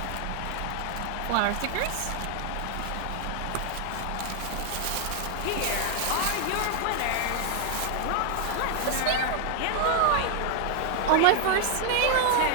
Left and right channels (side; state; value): both; different; correlation 0.00